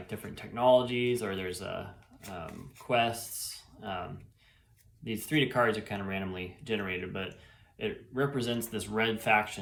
different technologies, or there's quests. These 3 cards are kind of randomly generated, but it represents this red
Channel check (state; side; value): identical; both; correlation 1.00